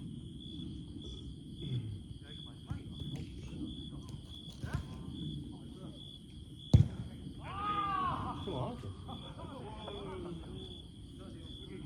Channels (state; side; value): identical; both; correlation 1.00